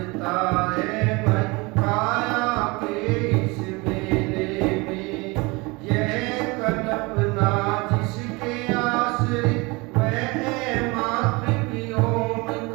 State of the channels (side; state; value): left; quieter; 25.5 dB